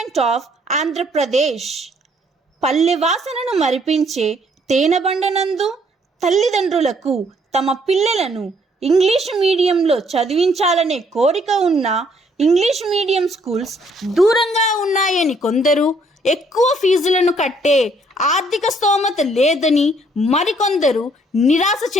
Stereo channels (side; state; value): both; normal; correlation 0.65